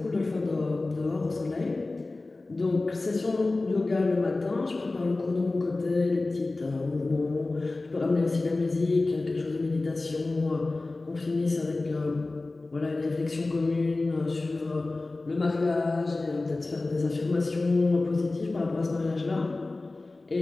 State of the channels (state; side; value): quieter; right; 3.2 dB